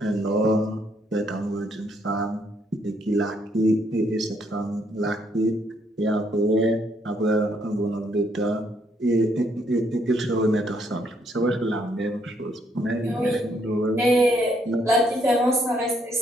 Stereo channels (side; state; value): both; normal; correlation 0.71